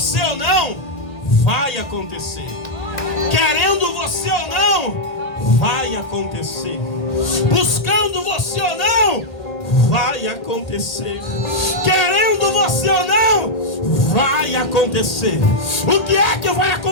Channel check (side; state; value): right; late; 1.8 ms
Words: ou não, vai acontecer. Querendo você ou não, vai acontecer. Buscando você ou não, vai acontecer. Querendo você ou não, vai acontecer. O que é que vai